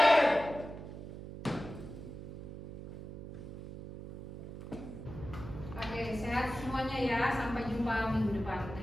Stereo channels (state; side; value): noise; right; hum, 11 dB below the sound